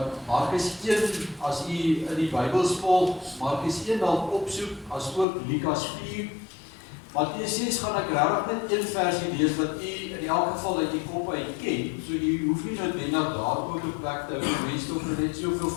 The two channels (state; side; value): drops out; right; at 5.2 s